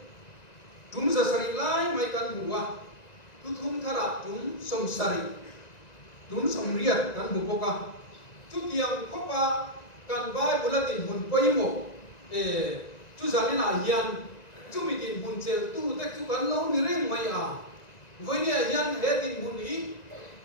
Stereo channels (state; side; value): late; right; 1.9 ms